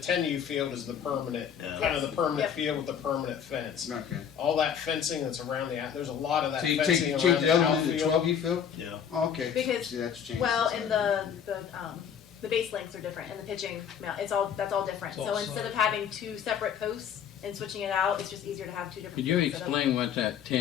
field is the permanent, Yeah. kind of the permanent Yep. field with the permanent fence. Okay. All that fencing that's around there's a lot of that So you fencing change around the the other one to the outfield. 12U field? Yeah. Oh, okay. Because, See, that's changed. well, since and I- the base lengths are different, and the pitching, that's all different. It's So all instead of solid. having two separate posts and switching it out, it's just easier to have two different. Could you fields set up. explain what that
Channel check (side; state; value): right; quieter; 8.3 dB